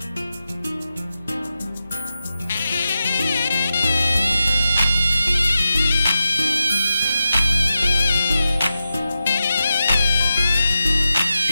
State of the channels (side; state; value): both; inverted; correlation -0.90